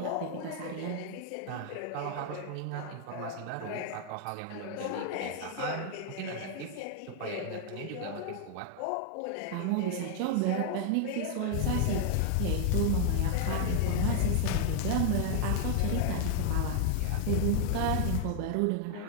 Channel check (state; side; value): different; both; correlation 0.00